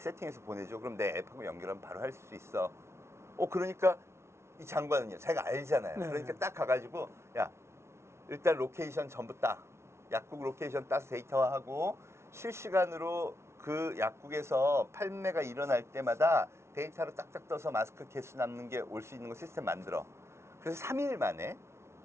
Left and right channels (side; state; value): left; late; 0.13 ms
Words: 보내줘. 그럼 내 앱하고 연결하면 바로 할 수 있어. 그러니까 이 장관은요 자기가 알잖아요. 네. 그러니까 딱 가가지고 야 일단 로케이션 전부 따 약국 로케이션 따서 데이터화하고 실시간으로 그 약국에서 판매가 일어날 때마다 데이터로 딱딱 떠서 마스크 개수 남는 게 올 수 있는 거 시스템 만들어. 그래서 3일 만에